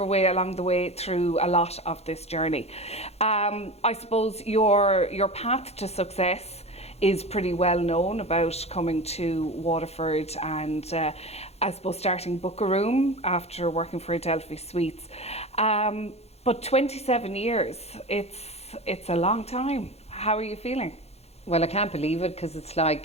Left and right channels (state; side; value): late; right; 0.30 ms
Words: way along the way through a lot of this journey. I suppose your path to success is pretty well known, about coming to Waterford and I suppose starting Book a Room after working for Adelphi Suites. But 27 years, it's a long time. How are you feeling? Well, I can't believe it because it's